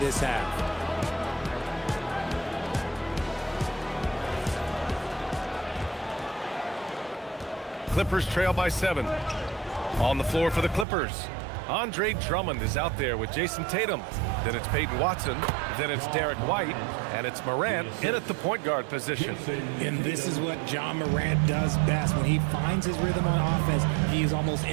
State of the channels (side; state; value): left; drops out; at 10.9 s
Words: half. Clippers trail by 7. On the floor for the Clippers. Andre Drummond is out there with Jason Tatum. Then it's Peyton Watson. Then it's Derek White. And it's Morant in at the point guard position. And this is what John Morant does best. When he finds his rhythm on offense, he is almost